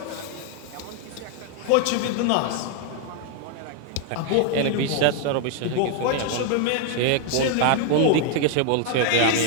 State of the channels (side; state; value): both; different; correlation 0.00